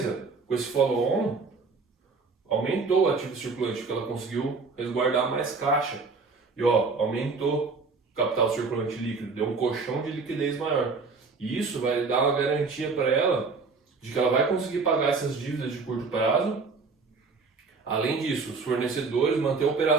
com esse follow-on, aumentou o ativo circulante, porque ela conseguiu resguardar mais caixa. E ó, aumentou o capital circulante líquido, deu um colchão de liquidez maior. E isso vai dar uma garantia para ela de que ela vai conseguir pagar essas dívidas de curto prazo. Além disso, os fornecedores manter a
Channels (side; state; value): left; quieter; 4.4 dB